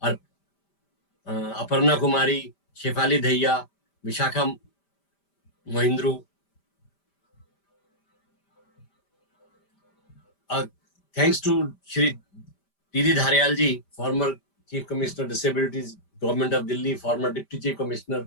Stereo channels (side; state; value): right; late; 5.1 ms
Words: Aparna Kumari, Shefali Dahiya, Vishakha Mahindru, thanks to Shri TD Dhariyal ji, former chief commissioner disabilities government of Delhi, farmer deputy chief